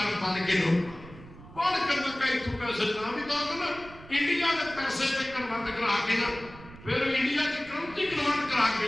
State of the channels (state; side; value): noise; right; rumble, 18 dB below the sound